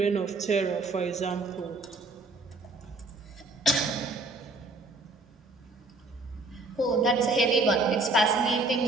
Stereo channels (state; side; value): quieter; left; 3.2 dB